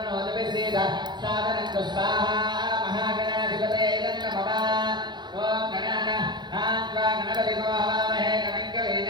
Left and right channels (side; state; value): left; late; 0.21 ms